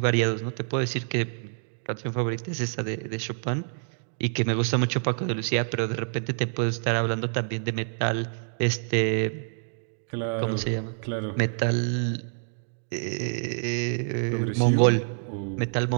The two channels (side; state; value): left; silent; digital silence